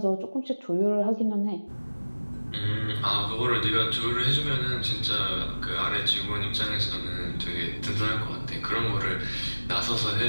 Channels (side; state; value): both; inverted; correlation -1.00